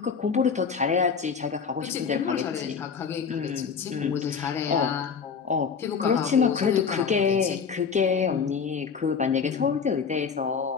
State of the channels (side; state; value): right; quieter; 6.1 dB